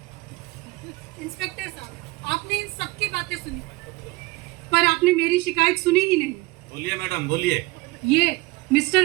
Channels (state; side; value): quieter; left; 22.2 dB